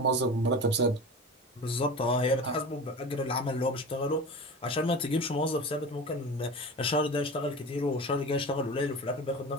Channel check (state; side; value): normal; both; correlation 0.32